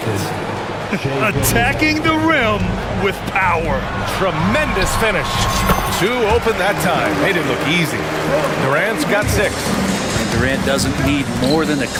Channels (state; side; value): identical; both; correlation 1.00